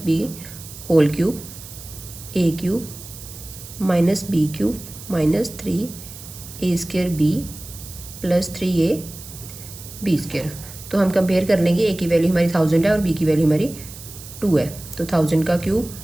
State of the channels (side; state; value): right; noise; hiss, 15 dB below the sound